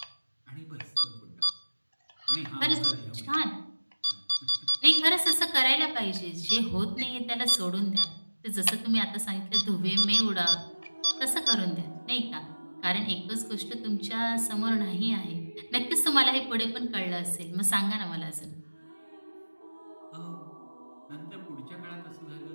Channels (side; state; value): both; inverted; correlation -1.00